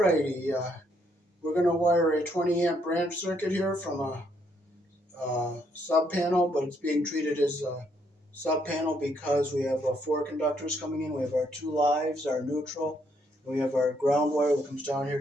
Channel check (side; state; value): both; normal; correlation 0.72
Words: Alrighty, we're going to wire a 20 amp branch circuit here from a sub panel, but it's being treated as a sub panel because we have 4 conductors coming in. We have our 2 lives, our neutral, and we have our ground wire that comes down here